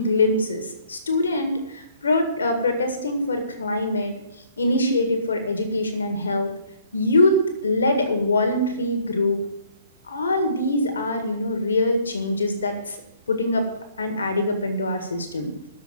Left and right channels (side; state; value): both; inverted; correlation -0.63